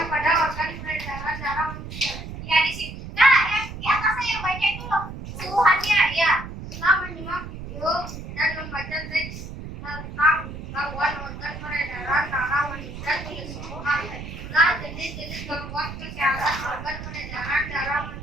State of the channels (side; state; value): right; noise; rumble, 10 dB below the sound